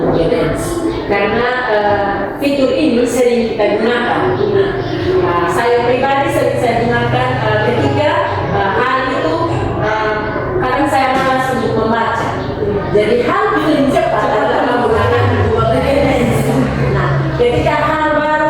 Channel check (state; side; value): identical; both; correlation 1.00